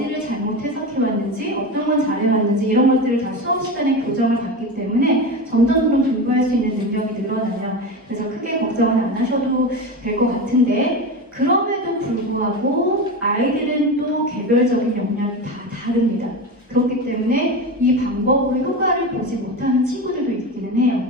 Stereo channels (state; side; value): normal; both; correlation 0.23